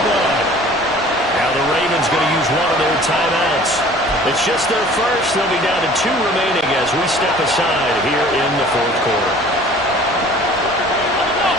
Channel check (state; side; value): normal; both; correlation 0.49